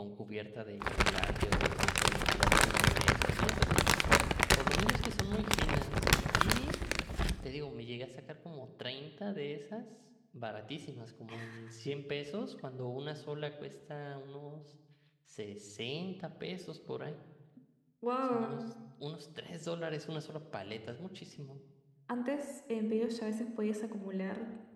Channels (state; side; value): identical; both; correlation 1.00